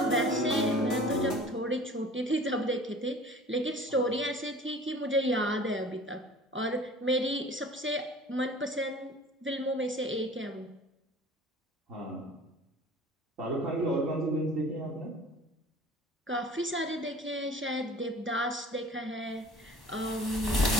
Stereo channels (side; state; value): both; normal; correlation 0.45